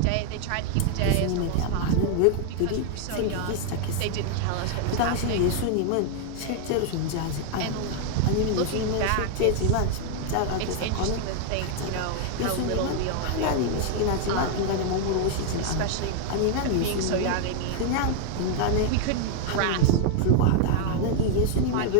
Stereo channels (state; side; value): different; both; correlation 0.00